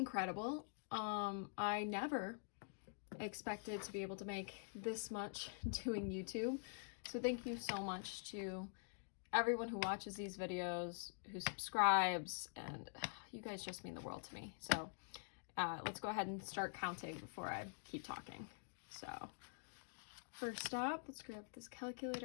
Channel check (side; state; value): right; silent; digital silence